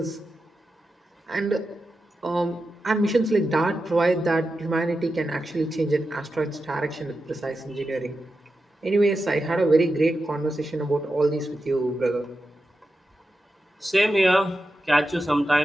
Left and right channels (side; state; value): both; normal; correlation 0.90